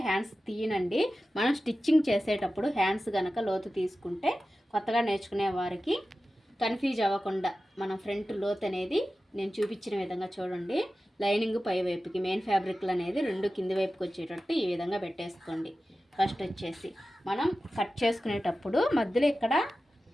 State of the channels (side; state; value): both; normal; correlation 0.94